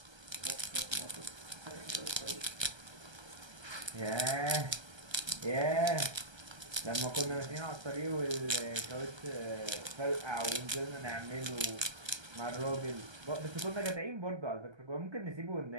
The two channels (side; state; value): left; late; 1.3 ms